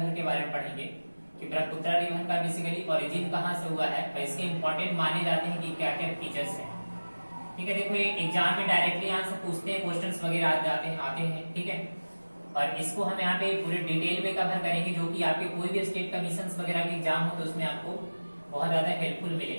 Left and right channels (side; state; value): both; inverted; correlation -1.00